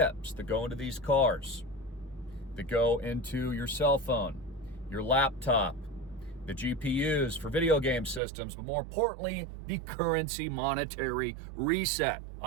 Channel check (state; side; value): drops out; left; at 8.2 s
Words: that go into these cars, that go into your cell phone, your laptop, the GPUs for video game systems, but more importantly, the currency monetary reset